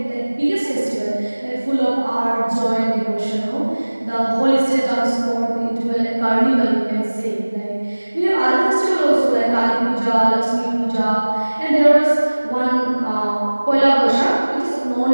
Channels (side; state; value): both; inverted; correlation -1.00